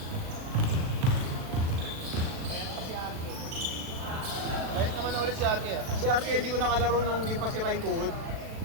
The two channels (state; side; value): late; left; 37 ms